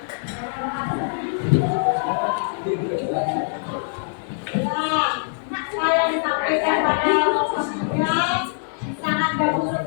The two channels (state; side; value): silent; right; digital silence